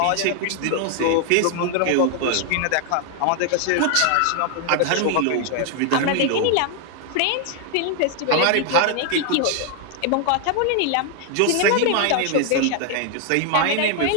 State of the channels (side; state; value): both; different; correlation 0.00